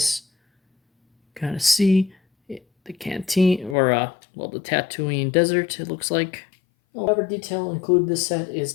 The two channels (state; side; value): drops out; right; at 3.8 s